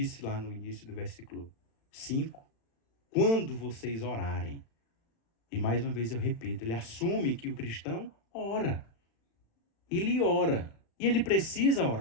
lá no início do versículo 5, quando vocês orarem. E mais uma vez eu repito, ele assume que o cristão ora. Ele ora. E ele precisa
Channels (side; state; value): right; late; 36 ms